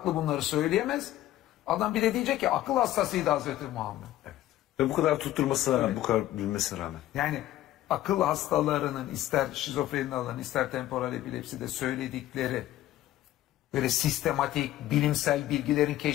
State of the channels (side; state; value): right; quieter; 14.3 dB